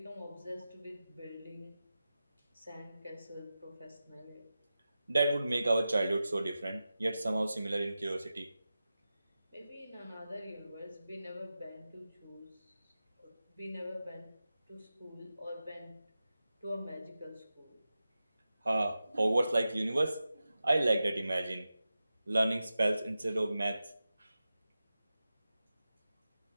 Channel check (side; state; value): both; inverted; correlation -0.93